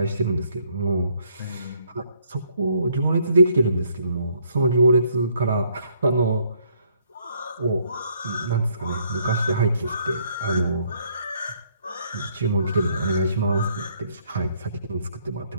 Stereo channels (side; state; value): both; inverted; correlation -0.68